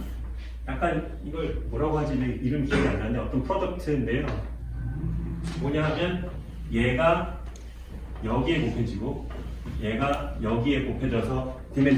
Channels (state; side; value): identical; both; correlation 1.00